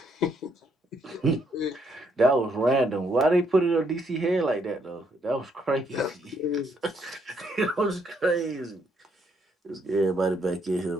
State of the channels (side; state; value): both; normal; correlation 0.72